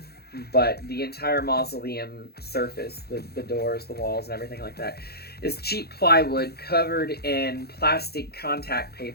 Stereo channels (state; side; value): late; right; 0.46 ms